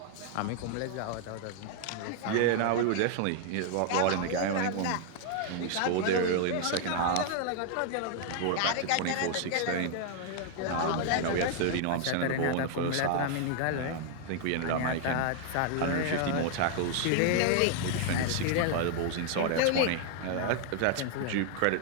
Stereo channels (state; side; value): different; both; correlation 0.00